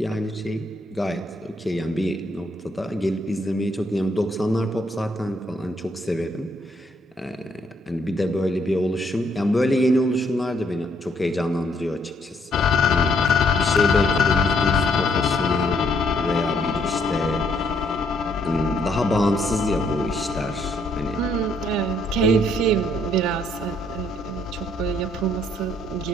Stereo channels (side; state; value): both; normal; correlation 0.69